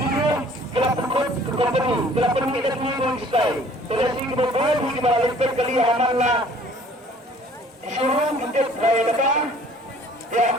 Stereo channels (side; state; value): both; normal; correlation 0.54